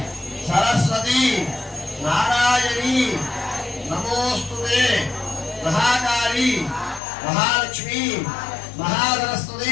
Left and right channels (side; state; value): right; drops out; at 7.0 s